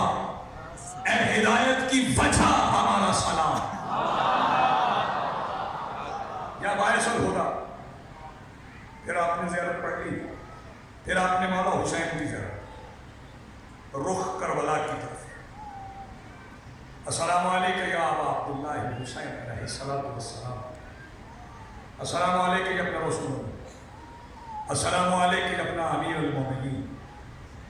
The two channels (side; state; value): both; identical; correlation 1.00